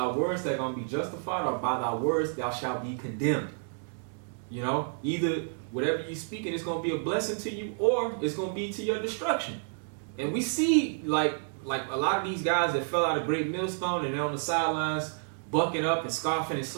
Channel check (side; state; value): left; silent; digital silence